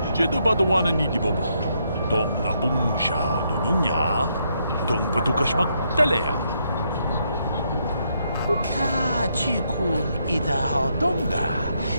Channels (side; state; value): both; inverted; correlation -0.76